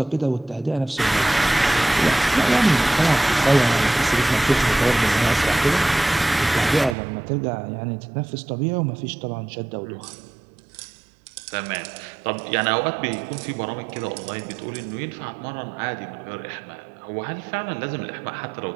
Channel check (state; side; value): drops out; left; at 7.0 s